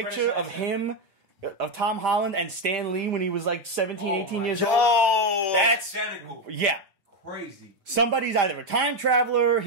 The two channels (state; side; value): late; left; 5.0 ms